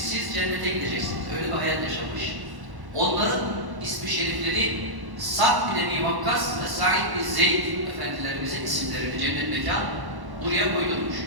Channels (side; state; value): left; late; 1.1 ms